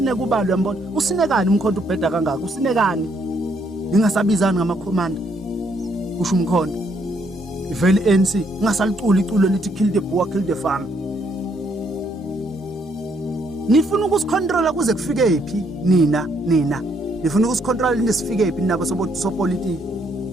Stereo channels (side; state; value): both; normal; correlation 0.71